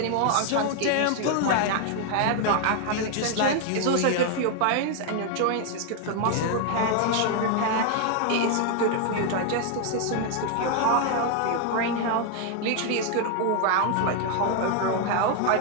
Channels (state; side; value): different; both; correlation 0.00